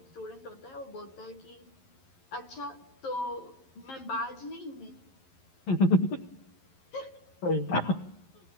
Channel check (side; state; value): right; late; 11 ms